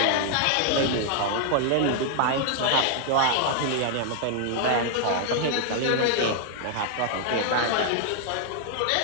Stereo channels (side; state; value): both; different; correlation 0.00